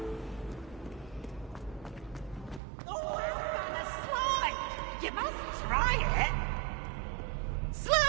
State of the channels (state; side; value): drops out; left; at 2.6 s